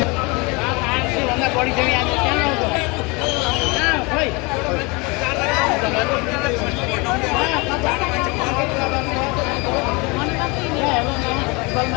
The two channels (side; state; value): right; quieter; 27.4 dB